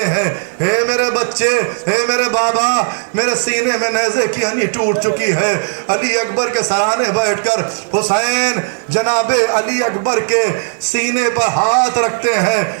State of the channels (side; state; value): left; silent; digital silence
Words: ہیں، اے میرے بچے، اے میرے بابا، میرے سینے میں نیزے کی ہنی ٹوٹ چکی ہے۔ علی اکبر کے سرانے بیٹھ کر حسین جناب علی اکبر کے سینے پر ہاتھ رکھتے ہیں،